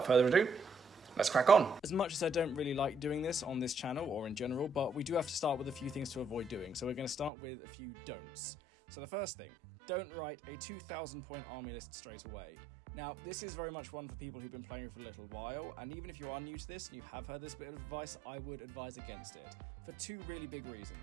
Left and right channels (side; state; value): left; drops out; at 7.3 s